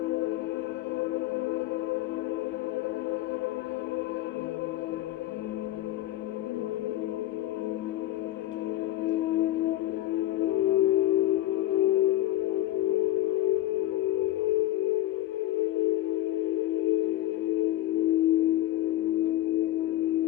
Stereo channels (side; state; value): right; quieter; 14.7 dB